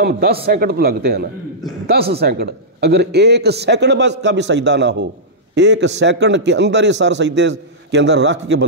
10 سیکنڈ تو لگتے ہیں نا، 10 سیکنڈ۔ اگر 1 سیکنڈ بس کا بھی سجدہ نہ ہو، 1 سیکنڈ کے اندر ہی سر سجدے کے اندر رکھ کے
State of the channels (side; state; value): both; normal; correlation -0.13